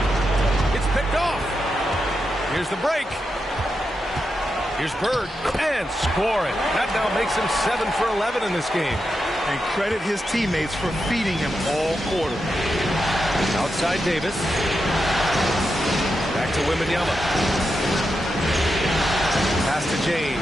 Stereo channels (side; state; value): both; normal; correlation 0.87